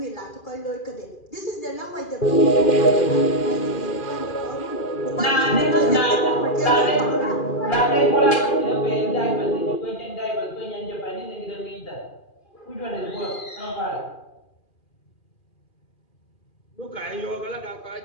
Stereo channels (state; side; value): late; right; 2.4 ms